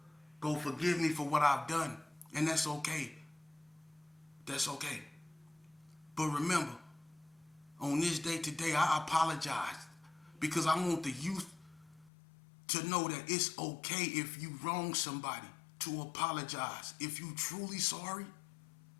forgive me for what I've done, and that's okay. That's okay. But remember, on this day today, I apologize because I want the youth to know that it's okay if you wrong somebody to apologize. If you truly sorry,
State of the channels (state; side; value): drops out; right; at 12.1 s